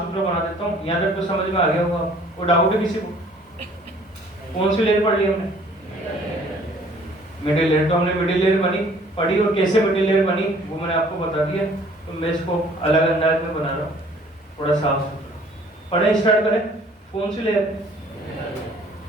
बना देता हूँ, यहाँ तक तो समझ में आ गया होगा। वो डाउट है किसी को? कौन सी लेयर पढ़ ली हमने? Middle layer. तो हमने मिडिल लेयर पढ़ी और कैसे मिडिल लेयर बनी वो मैंने आपको बता दिया। तो मैं इसको अलग अंदाज में बना रहा हूँ, थोड़ा साफ सुथरा। पढ़े, स्टार्ट करें। कौन सी लेयर?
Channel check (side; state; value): both; normal; correlation 0.55